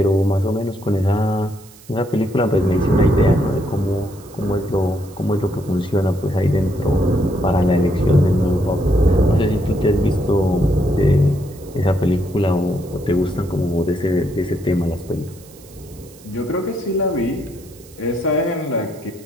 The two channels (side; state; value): right; noise; hiss, 24 dB below the sound